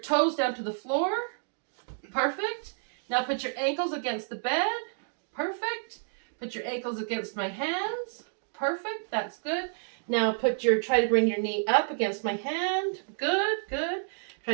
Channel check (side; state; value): left; silent; digital silence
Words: down to the floor. Perfect. Now put your ankles against the bed. Perfect. Put your ankles against my hands. Perfect. That's good. Now try to bring your knee up against my hand. Good, good.